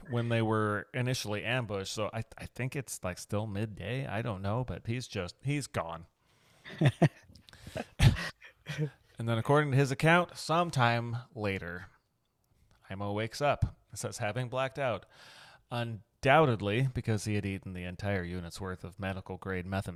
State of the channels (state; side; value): identical; both; correlation 1.00